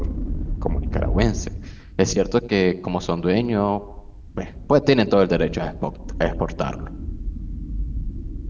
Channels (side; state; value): both; identical; correlation 1.00